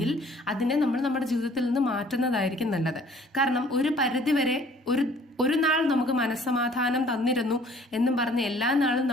അതിനെ നമ്മൾ നമ്മുടെ ജീവിതത്തിൽ നിന്ന് മാറ്റുന്നതായിരിക്കും നല്ലത്. കാരണം ഒരു പരിധിവരെ ഒരു നാൾ നമുക്ക് മനസ്സമാധാനം തന്നിരുന്നു എന്നും പറഞ്ഞ് എല്ലാ നാളും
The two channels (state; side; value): normal; both; correlation 0.55